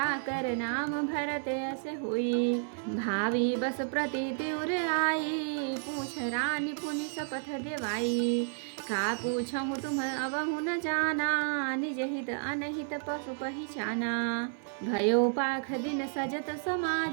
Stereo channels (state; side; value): silent; left; digital silence